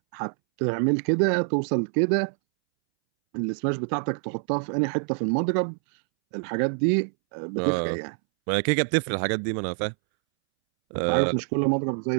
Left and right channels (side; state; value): left; silent; 61 dB below the other